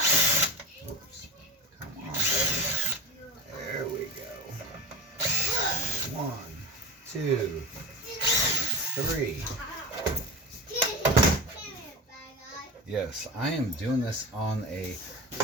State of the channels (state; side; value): normal; both; correlation 0.25